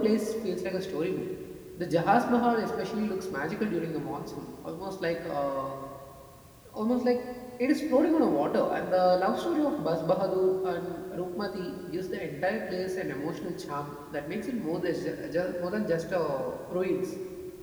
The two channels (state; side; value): identical; both; correlation 1.00